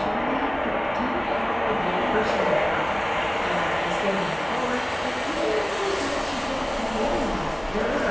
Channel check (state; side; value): noise; right; hum, 22 dB below the sound